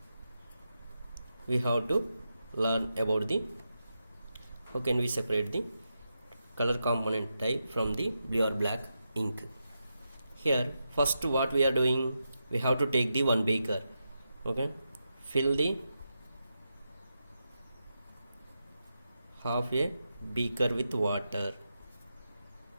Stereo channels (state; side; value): inverted; both; correlation -0.87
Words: we have to learn about the how can we separate the color component type from the blue or black ink. Here, first what we are doing, we have to take the one beaker. Okay, fill the half a beaker with water.